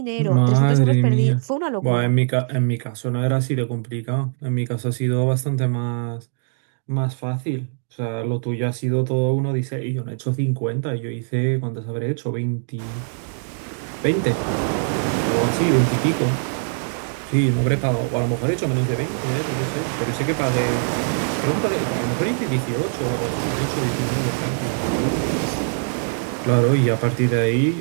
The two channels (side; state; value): left; silent; digital silence